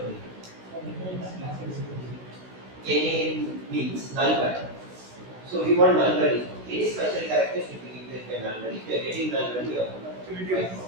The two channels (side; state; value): left; late; 16 ms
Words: NA means null value. So we want null value. Any special characters should be given by null value. If you are getting null value, you have to